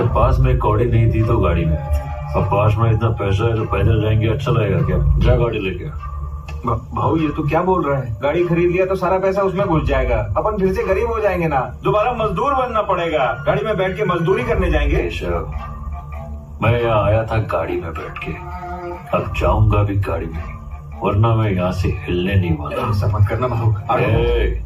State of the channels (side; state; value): both; identical; correlation 1.00